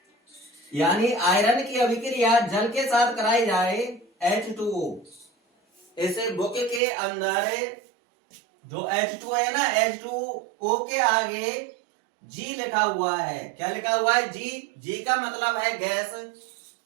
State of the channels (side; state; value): left; drops out; at 6.8 s